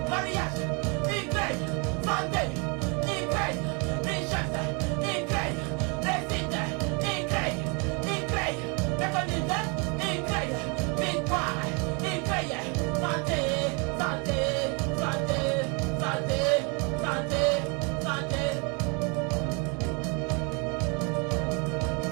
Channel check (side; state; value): left; quieter; 32.8 dB